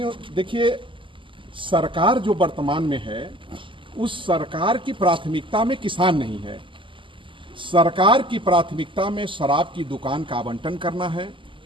देखिए, सरकार जो वर्तमान में है उस सरकार की प्राथमिकता में किसान नहीं है। सरकार की प्राथमिकता में शराब की दुकान का आवंटन करना है।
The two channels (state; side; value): late; left; 0.25 ms